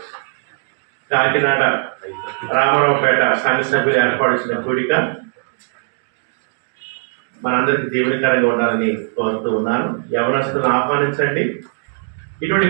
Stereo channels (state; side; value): silent; left; 67 dB below the other